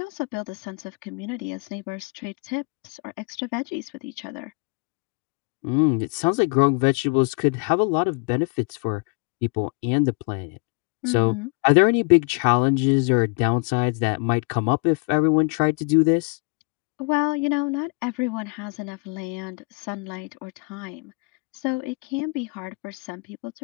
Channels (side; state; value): right; quieter; 34.1 dB